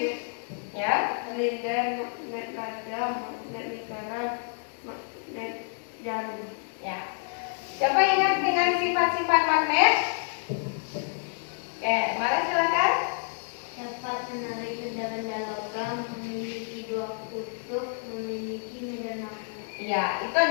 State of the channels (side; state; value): right; silent; 59 dB below the other